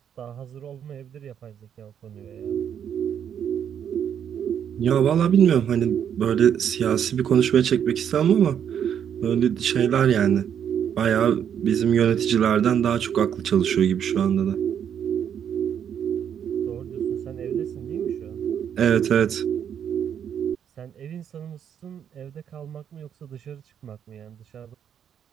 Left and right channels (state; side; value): quieter; left; 8.7 dB